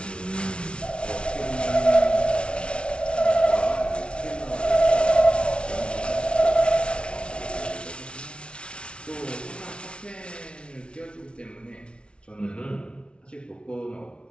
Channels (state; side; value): late; right; 0.058 ms